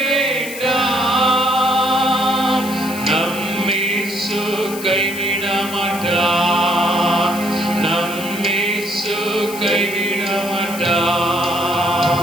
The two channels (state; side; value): noise; left; hiss, 12 dB below the sound